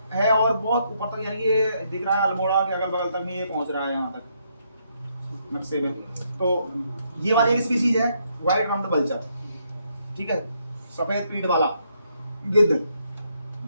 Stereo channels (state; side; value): inverted; both; correlation -0.75